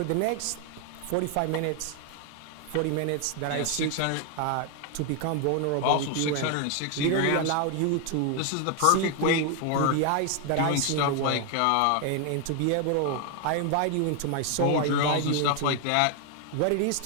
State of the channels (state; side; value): different; both; correlation 0.01